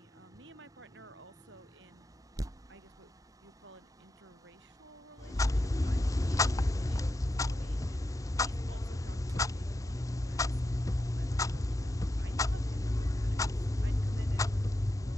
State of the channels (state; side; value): normal; both; correlation 0.87